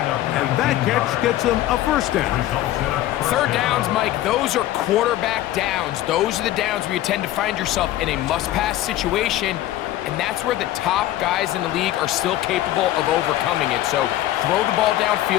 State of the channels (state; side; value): quieter; right; 14.3 dB